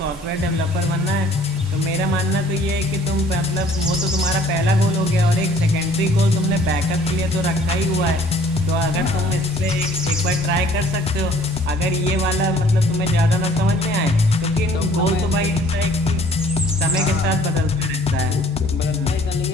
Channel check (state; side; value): normal; both; correlation 0.56